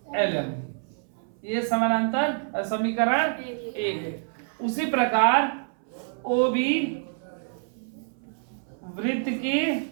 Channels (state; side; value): silent; left; 60 dB below the other